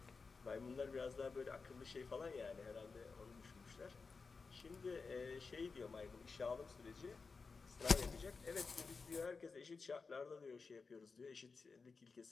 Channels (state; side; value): quieter; right; 4.6 dB